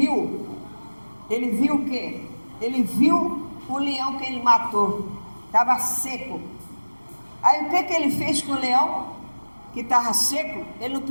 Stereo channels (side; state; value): both; inverted; correlation -1.00